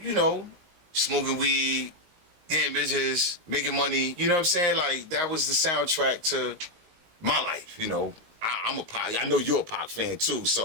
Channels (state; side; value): late; left; 19 ms